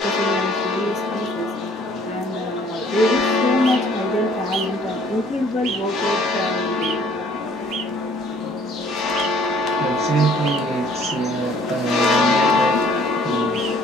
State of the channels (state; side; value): normal; both; correlation 0.58